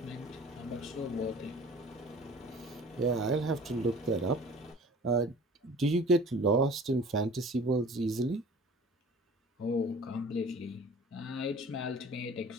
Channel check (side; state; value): both; normal; correlation 0.46